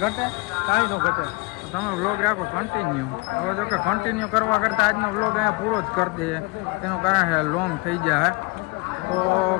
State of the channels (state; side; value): quieter; right; 27.5 dB